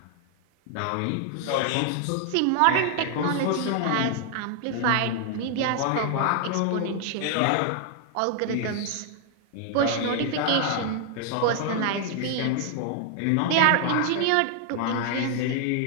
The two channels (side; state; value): both; different; correlation 0.00